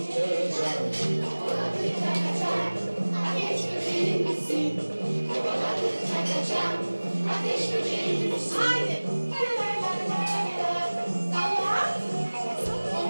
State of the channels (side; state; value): both; inverted; correlation -1.00